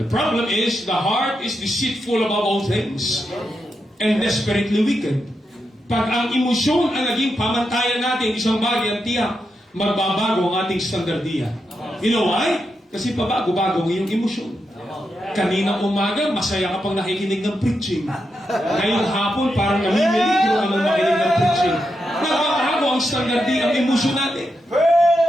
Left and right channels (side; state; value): both; normal; correlation 0.85